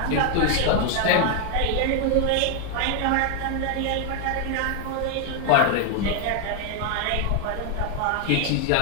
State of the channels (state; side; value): different; both; correlation 0.01